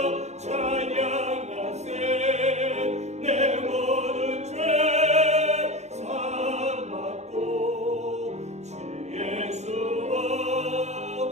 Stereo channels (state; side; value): late; left; 0.33 ms